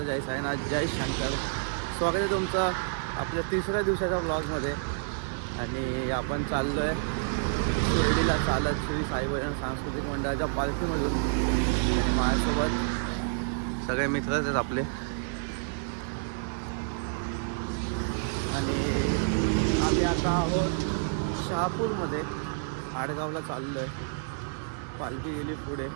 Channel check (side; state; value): left; silent; 59 dB below the other